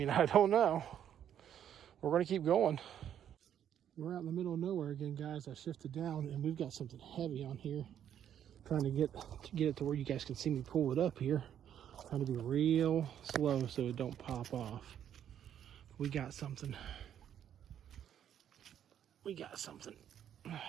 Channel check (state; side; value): quieter; left; 9.8 dB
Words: I don't know. We're going to keep going. We're out in the middle of nowhere again, guys. I shifted down and we've got something heavy on here. Trying to get it to where you guys can see me pull it up here. Trying to be real slow so it don't pop off. We got something. We got something.